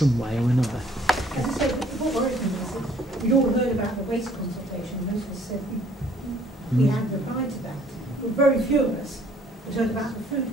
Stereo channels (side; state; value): both; normal; correlation 0.59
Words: way or another. We'd all heard about the waste consultation. Most of us said we hadn't replied to that. But very few of us had heard about the